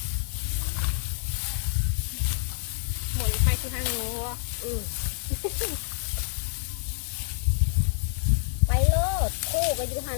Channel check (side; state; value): right; silent; digital silence